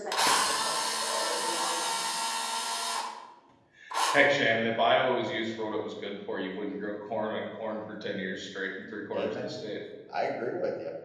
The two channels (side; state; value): both; identical; correlation 1.00